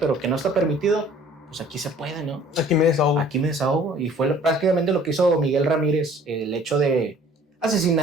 que no está permitido. Pues aquí se puede, ¿no? Aquí me desahogo. Y fue prácticamente lo que hizo Miguel Ramírez, el hecho de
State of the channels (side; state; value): both; normal; correlation 0.53